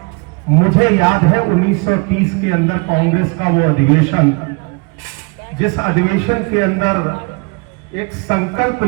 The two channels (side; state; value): left; quieter; 30.3 dB